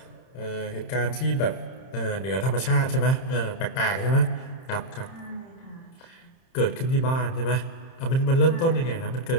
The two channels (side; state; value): right; late; 30 ms